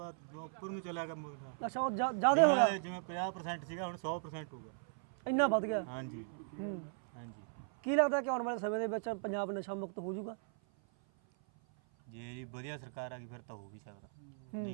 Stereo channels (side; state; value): left; silent; 52 dB below the other